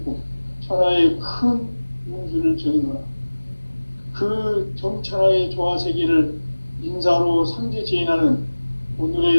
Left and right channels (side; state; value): both; inverted; correlation -1.00